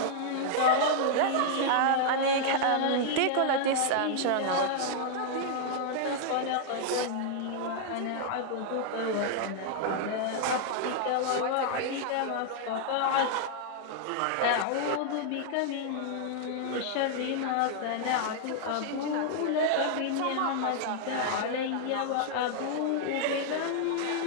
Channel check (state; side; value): different; both; correlation -0.01